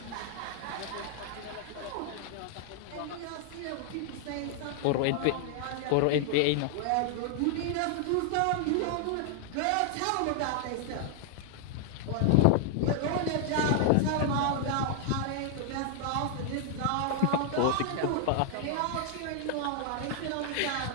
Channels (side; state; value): both; different; correlation 0.00